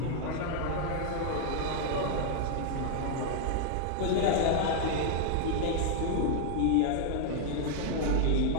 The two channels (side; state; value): both; different; correlation 0.00